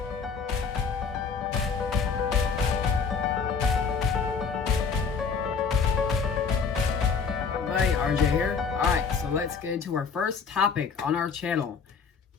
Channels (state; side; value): quieter; right; 5.6 dB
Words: Everybody, RJ here. Alright, so let's get into our first topic on our channel.